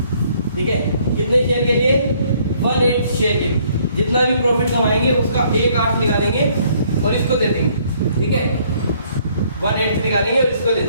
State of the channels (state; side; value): inverted; both; correlation -0.64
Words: ठीक है, कितने शेयर के लिए 1/8 शेयर के लिए। जितना भी प्रॉफिट कमाएंगे उसका 1/8 निकाल देंगे और इसको दे देंगे। ठीक है 1/8 निकालेंगे और इसको दे